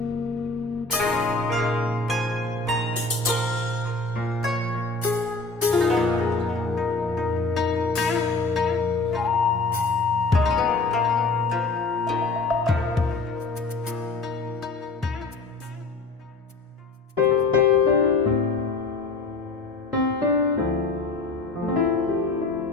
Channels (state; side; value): quieter; right; 3.6 dB